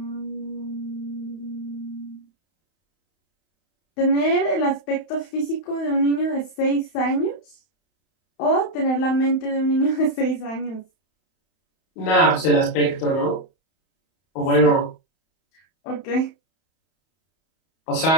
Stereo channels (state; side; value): late; right; 31 ms